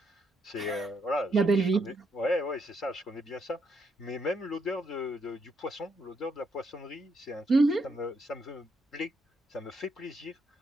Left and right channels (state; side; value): normal; both; correlation 0.77